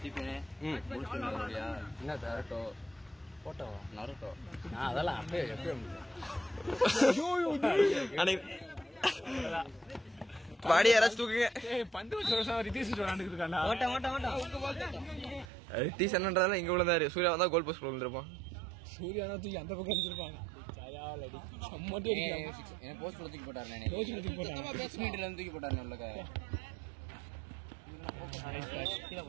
சீப்பேனே என்ன தரட்டோ போட்டோ நரட்டோ அதெல்லாம் அப்படியே எப்பயும் பாடி யாராச்சும் தூக்குங்க. பந்து வருஷம் ரிதீஷ் விளாண்டுட்டு இருக்காண்டா. ரிதீஷ் என்னன்றதால இங்க விழுந்தாரு. சூர்யா வந்தா கோல் போஸ்ட் விழுந்திருப்பான். சூர்யா தான் தூக்கி அந்த பக்கம் வச்சிருப்பாங்க. போஸ்ட் தூக்கி போட்டாரு. தூக்கி போட்டாரு.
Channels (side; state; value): left; drops out; at 15.5 s